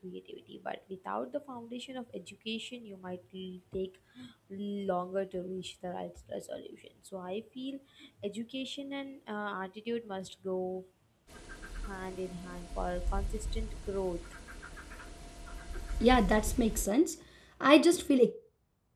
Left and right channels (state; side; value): identical; both; correlation 1.00